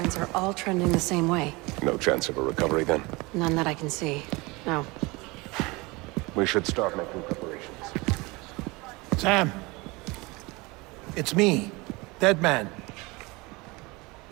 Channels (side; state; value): left; quieter; 24.5 dB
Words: are all trending the same way. No chance of a recovery then? None that I can see. No. We should start making preparations. Sam! It's me, Dead Man.